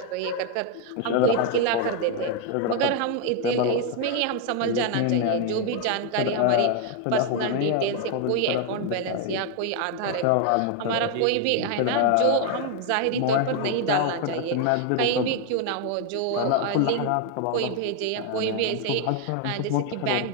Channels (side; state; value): both; different; correlation 0.01